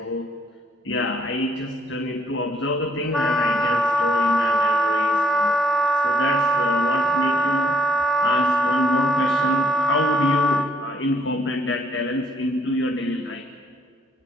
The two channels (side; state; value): both; normal; correlation 0.69